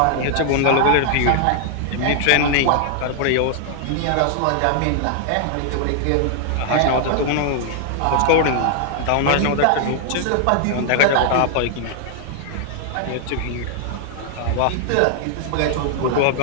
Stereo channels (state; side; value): different; both; correlation 0.00